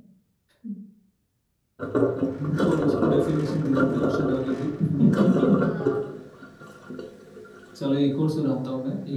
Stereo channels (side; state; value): both; identical; correlation 1.00